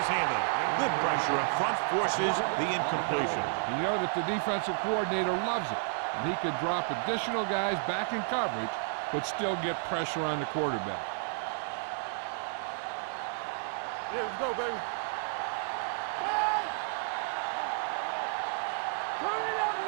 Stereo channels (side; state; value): left; silent; digital silence